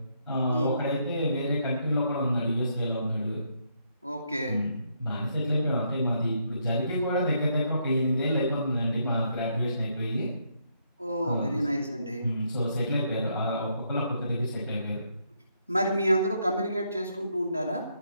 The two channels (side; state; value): both; inverted; correlation -0.75